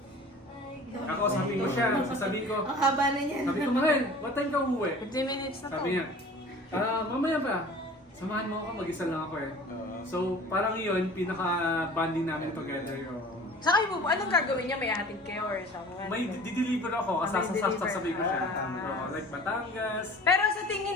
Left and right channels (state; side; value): normal; both; correlation 0.44